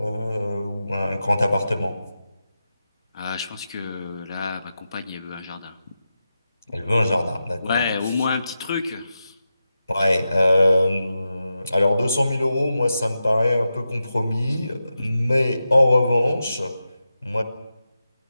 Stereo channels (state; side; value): inverted; both; correlation -0.90